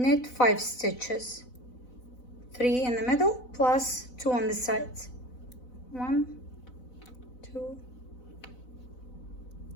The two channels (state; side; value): late; right; 4.0 ms